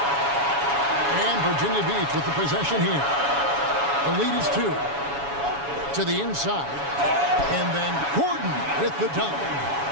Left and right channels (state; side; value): late; left; 7.1 ms